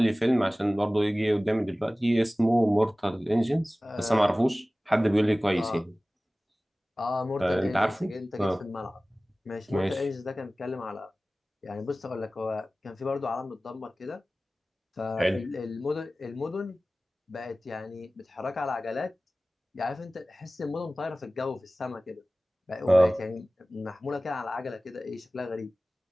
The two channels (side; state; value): both; normal; correlation 0.97